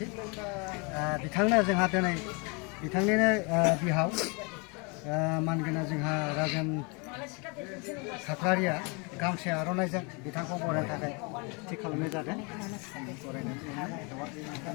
बिथांनो जोंहा दिनै बिथांनिनो बिहाव मानगोनां जोंहा राजेन खाख्लारिया गामसे आर'नाइजों बिथांखौ बरायनो थाखाय थि खालामनाय जादों।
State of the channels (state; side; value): quieter; right; 31.4 dB